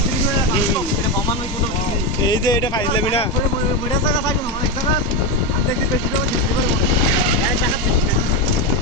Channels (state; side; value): normal; both; correlation 0.11